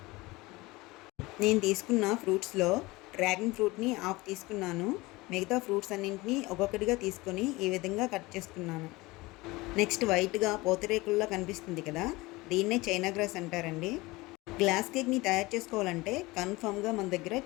నేను తీసుకున్న ఫ్రూట్స్లో డ్రాగన్ ఫ్రూట్ని హాఫ్ తీసుకున్నాను. మిగతా ఫ్రూట్స్ అన్నింటినీ ఒక్కొక్కటిగా తీసుకొని ఈ విధంగా కట్ చేసుకున్నాను. నెక్స్ట్ వైట్గా పూతరేకుల్లా కనిపిస్తుంది కదా, దీన్నే చైనా గ్రాస్ అంటారండి. గ్లాస్ కేక్ని తయారు చేసుకోవాలంటే కన్ఫామ్గా మన దగ్గర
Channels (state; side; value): quieter; right; 21.7 dB